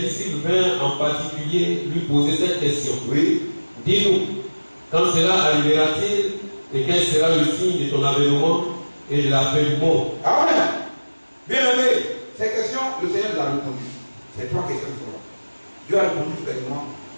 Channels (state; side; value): inverted; both; correlation -1.00